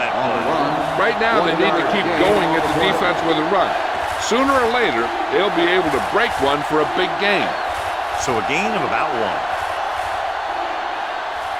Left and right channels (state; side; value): identical; both; correlation 1.00